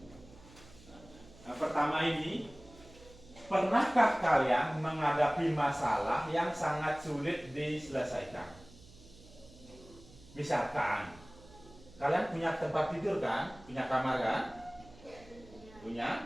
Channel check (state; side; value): noise; right; hum, 22 dB below the sound